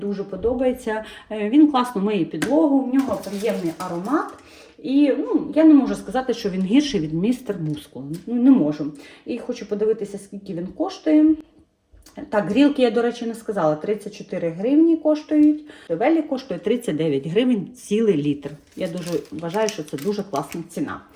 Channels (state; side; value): identical; both; correlation 1.00